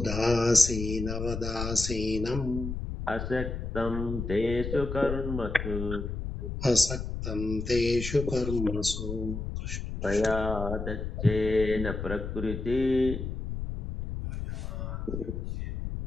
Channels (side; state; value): left; noise; rumble, 5 dB below the sound